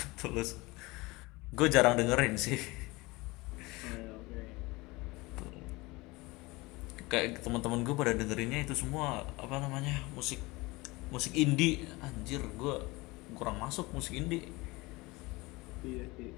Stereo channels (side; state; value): right; quieter; 23.0 dB